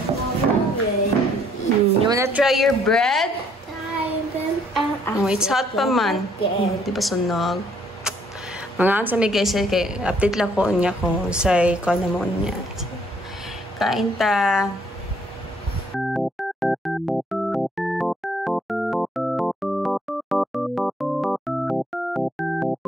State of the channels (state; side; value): normal; both; correlation 0.65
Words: You wanna try your bread? Oh, it's hot pa man. Di ba sunog? Mga sa may guys, kay update lang ko niya kung say ko na mo niya. Kain ta.